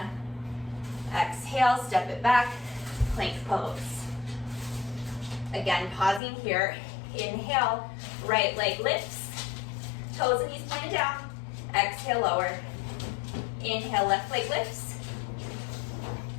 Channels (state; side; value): drops out; right; at 6.2 s